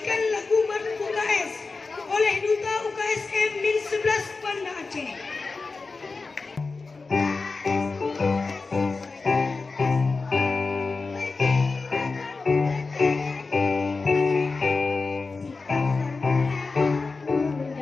lagu Maruf UKS oleh Duta UKSM Min 11 Banda Aceh.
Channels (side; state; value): right; quieter; 4.1 dB